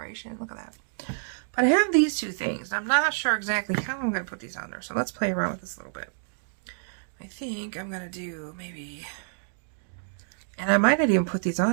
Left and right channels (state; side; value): silent; left; digital silence